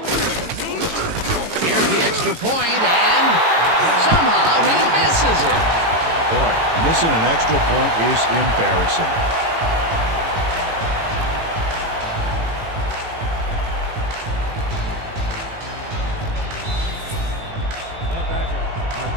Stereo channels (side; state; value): left; late; 18 ms